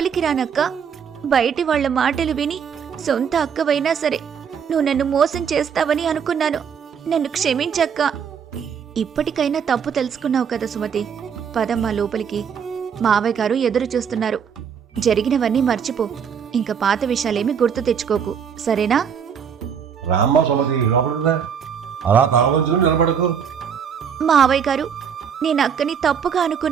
రానక్క? బయటి వాళ్ల మాటలు విని సొంత అక్కవైనా సరే నువ్వు నన్ను మోసం చేస్తావని అనుకున్నాను. నన్ను క్షమించక్క. ఇప్పటికైనా తప్పు తెలుసుకున్నావు కదా సుమతి. పదమ్మా లోపలికి. మావయ్య గారు ఎదురు చూస్తున్నారు. జరిగినవన్నీ మర్చిపో. ఇంకా పాత విషయాలేమీ గుర్తు తెచ్చుకోకు, సరేనా? రామ్మ సుమతి, లోపల అలా కావచ్చు నిలబడకు. మావయ్య గారు, నేను అక్కని తప్పుగా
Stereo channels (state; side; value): quieter; left; 7.3 dB